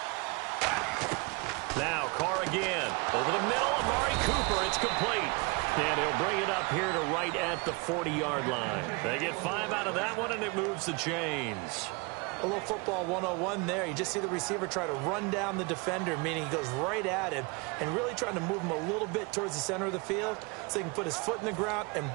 Now Carr again. Over the middle, Amari Cooper. It's complete. And he'll bring it up here to right at the 40-yard line. They get 5 out of that one, and it moves the chains. A little football 101 there. You just see the receiver try to run down the defender, meaning he goes right at him and really trying to move him a little bit towards the center of the field so he can put his foot in the ground and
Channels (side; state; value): left; quieter; 28.7 dB